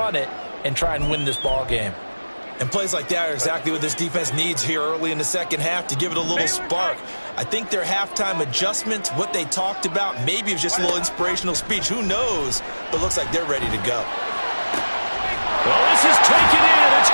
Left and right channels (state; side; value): inverted; both; correlation -1.00